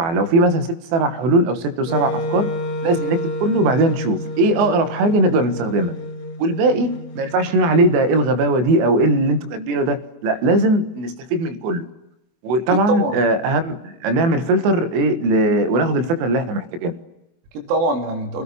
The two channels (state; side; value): late; left; 24 ms